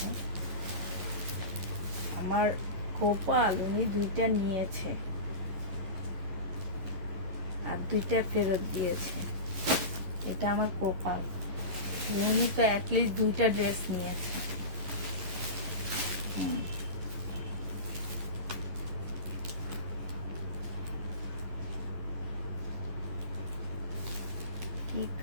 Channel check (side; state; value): left; late; 11 ms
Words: আমার কপাল, উনি দুইটা নিয়েছে আর দুইটা ফেরত দিয়েছে। এটা আমার কপাল। উনি তো অ্যাটলিস্ট দুইটা ড্রেস নিয়েছে। কি